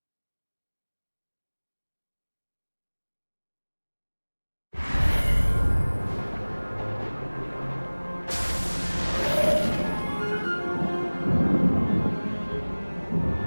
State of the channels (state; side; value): inverted; both; correlation -1.00